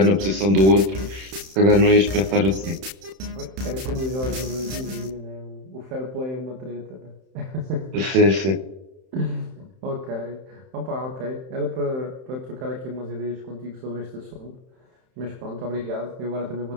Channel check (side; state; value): left; late; 31 ms